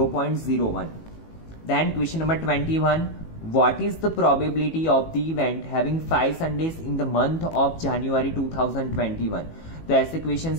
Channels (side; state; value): right; late; 18 ms